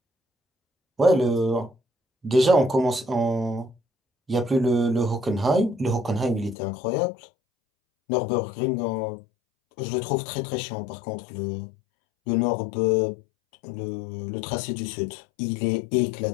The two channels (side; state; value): right; drops out; at 6.6 s